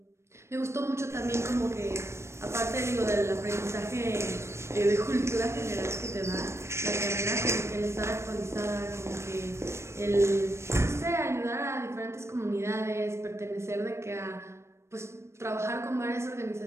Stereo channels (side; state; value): left; late; 0.13 ms